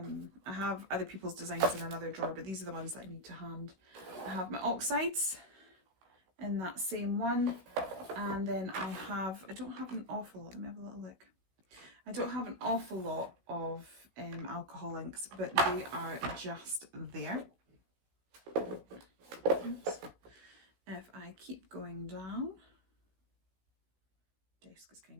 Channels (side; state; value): left; late; 16 ms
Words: have other people's designs in another drawer, but these are the ones that I need to hand. I have my oxides in that same one. And then I don't have an awful lot, let me have a little look. I don't have an awful lot of alcohol inks, but they are just there. Oops. If I keep going down, desk is kind